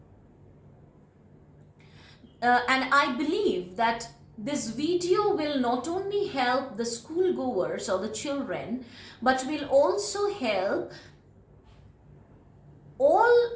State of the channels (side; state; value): both; identical; correlation 1.00